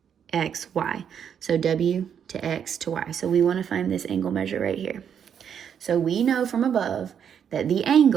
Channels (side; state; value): left; quieter; 8.2 dB